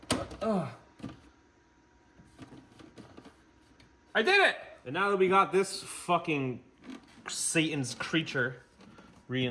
I did it! And now that we got this fucking Satan's creature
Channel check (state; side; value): identical; both; correlation 1.00